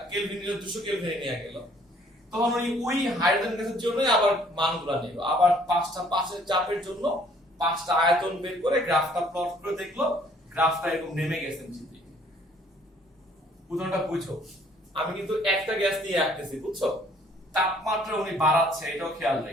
কেলভিন 200 কেলভিনে নিয়ে গেল, তখন উনি ওই হাইড্রোজেন গ্যাসের জন্য আবার মানগুলা নিল, আবার পাঁচটা পাশের চাপের জন্য পাঁচটা আয়তন বের করে গ্রাফটা প্লট করে দেখলো, গ্রাফটা এরকম নেমে গেছে নিচের দিকে। উদাহরণটা বুঝো, আমি কিন্তু একটা গ্যাস দিয়ে আঁকতেছি, বুঝছো? তাপমাত্রা উনি বাড়াচ্ছে, এটাও খেয়াল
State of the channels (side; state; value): both; normal; correlation 0.60